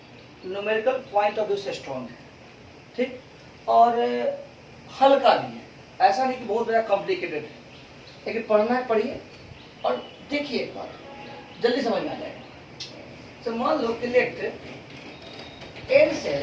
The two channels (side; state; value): both; identical; correlation 1.00